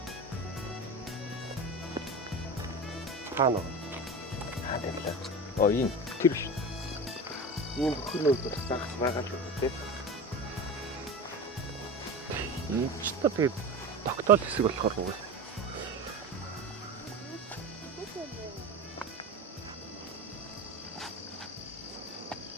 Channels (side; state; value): both; normal; correlation 0.29